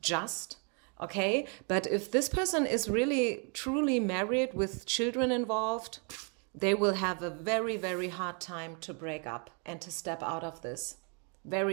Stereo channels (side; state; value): left; quieter; 37.5 dB